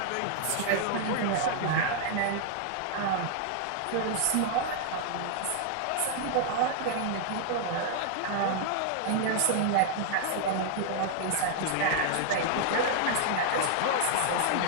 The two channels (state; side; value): different; both; correlation 0.00